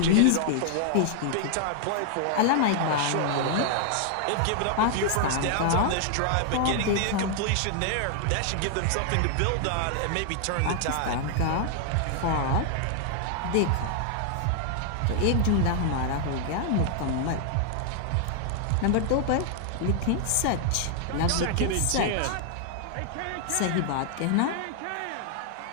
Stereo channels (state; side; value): different; both; correlation 0.00